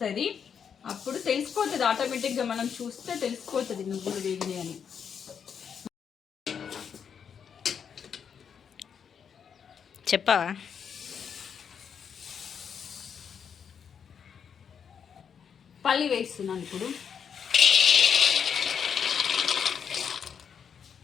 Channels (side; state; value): right; quieter; 7.3 dB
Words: అప్పుడు తెలిసిపోతుంది, ఆటోమేటిక్గా మనం చూస్తే తెలిసిపోతుంది నువ్వులు వేగినాయి అని. చెప్పవా? పల్లి వేస్తున్నాను ఇప్పుడు.